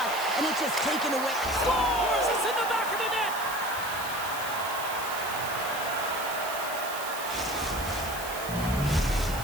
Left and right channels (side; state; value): right; noise; hiss, 10 dB below the sound